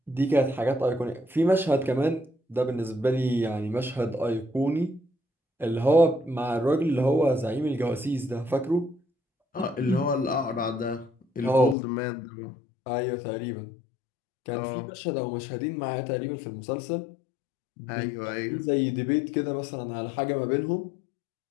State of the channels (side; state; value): right; drops out; at 11.8 s